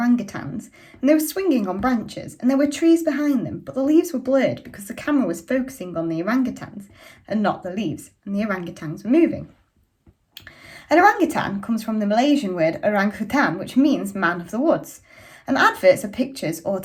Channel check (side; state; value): both; identical; correlation 1.00